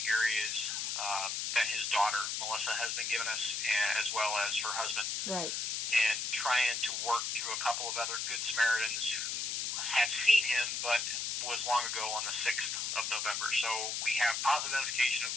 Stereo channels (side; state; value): left; noise; hiss, 1 dB below the sound